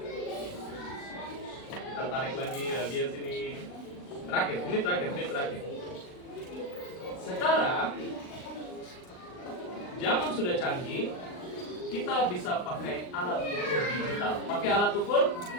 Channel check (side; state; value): right; late; 39 ms